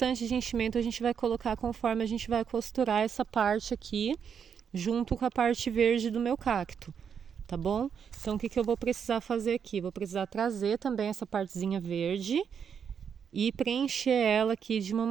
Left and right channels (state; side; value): quieter; left; 7.3 dB